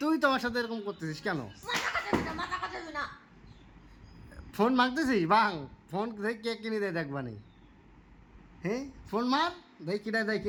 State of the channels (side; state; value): both; identical; correlation 1.00